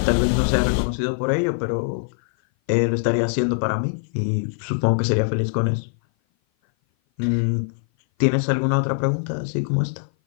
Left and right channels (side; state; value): right; silent; 57 dB below the other